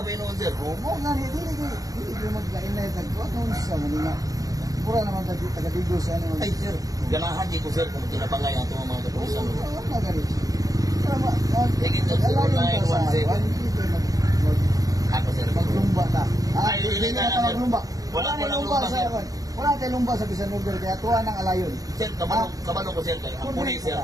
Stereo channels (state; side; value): late; left; 0.17 ms